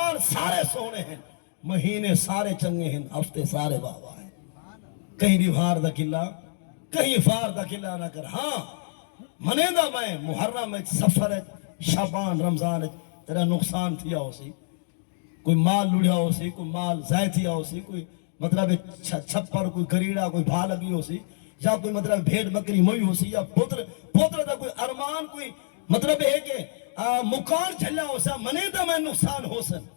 سارے سونے ہیں مہینے سارے چنگے ہیں ہفتے سارے بابا ہیں کہیں ڈیمہار دا گلہ کہیں فار دا گلہ نہ کر ہاں منے دا میں محرم سفر شعبان رمضان تیرا نقصان تھیا ہو سی کوئی مال لڑیا ہو سی کوئی مال ضائع تھیا ہو سی کوئی مطلب چھپر کوئی گریڑا کوئی بھا لگی ہو سی یا کوئی مطلب بھیڑ بکری موئی ہو سی یا پوتر دا کوئی ارمان کوئی مطلب ہے کہ مکان چلا ہو سا منے دا میں نقصان ہو سن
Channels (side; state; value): right; silent; digital silence